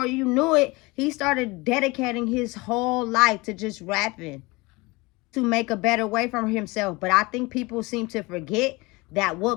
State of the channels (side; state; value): right; quieter; 24.0 dB